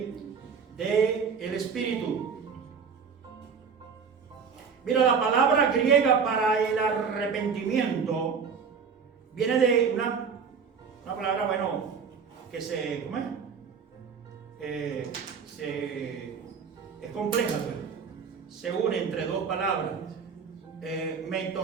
del Espíritu. Mira, la palabra griega para el arrepentimiento viene de una palabra, bueno, que se, ¿cómo es? es compleja, pero se une entre dos palabras.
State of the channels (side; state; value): left; quieter; 6.1 dB